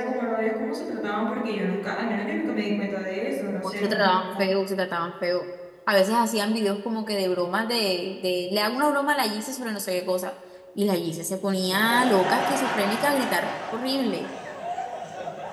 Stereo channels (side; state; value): both; identical; correlation 1.00